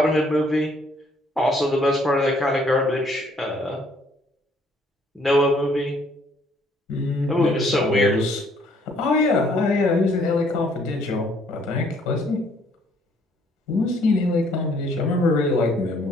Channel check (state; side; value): normal; both; correlation 0.64